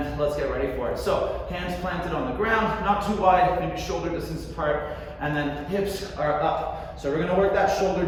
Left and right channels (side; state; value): both; identical; correlation 1.00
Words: let's get ready for it. So hands planted on the ground, not too wide, maybe shoulder distance apart. And then hips are up. So we're going to work that shoulder